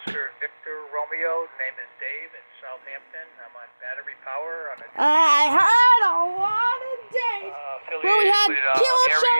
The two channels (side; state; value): both; inverted; correlation -1.00